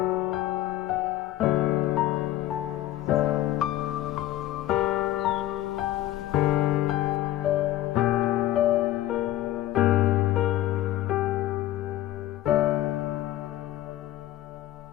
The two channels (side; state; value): right; quieter; 14.3 dB